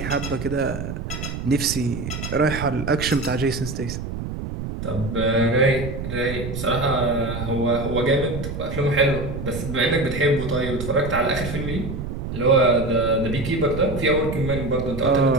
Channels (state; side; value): noise; right; rumble, 6 dB below the sound